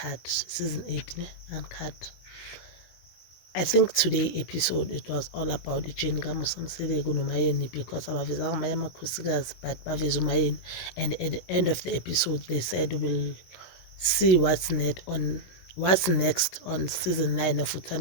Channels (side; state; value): right; late; 17 ms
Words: season 8 Uncut. I think today episode it was all about ijeni kaMusa Mseleko noMayeni because abavezanga amanye amakhosikazi but baveza uMayeni, and at the end of the episode they said we'll see what's next on season 9 of